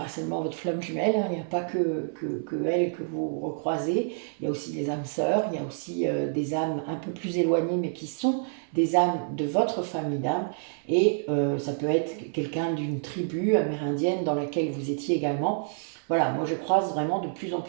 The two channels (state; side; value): silent; left; 59 dB below the other